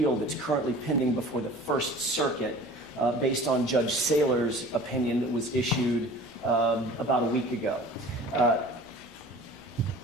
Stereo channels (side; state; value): both; normal; correlation 0.44